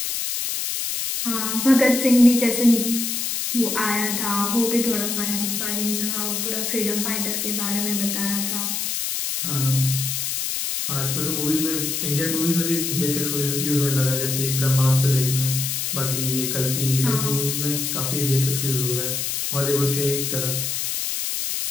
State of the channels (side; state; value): left; noise; hiss, 1 dB below the sound